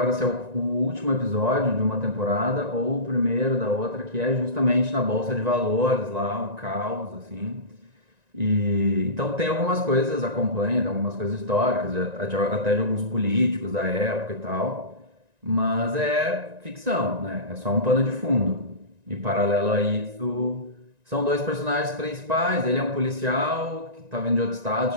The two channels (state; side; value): late; left; 1.9 ms